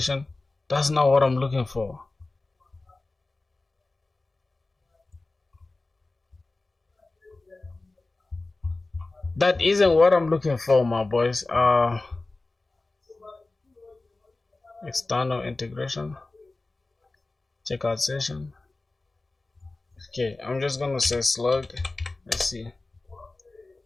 That's not what I'm looking for. That isn't what I'm looking for, my boys. External integration. Checkout session. Okay, I'm just gonna say slug. Let's see.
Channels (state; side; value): quieter; right; 3.2 dB